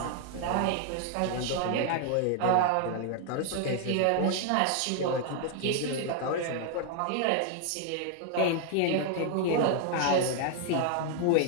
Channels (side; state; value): both; different; correlation 0.00